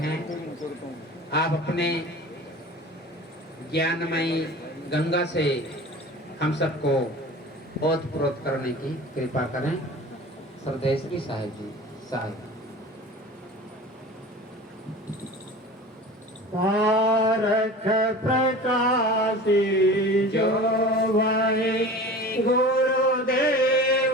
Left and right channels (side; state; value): both; normal; correlation 0.38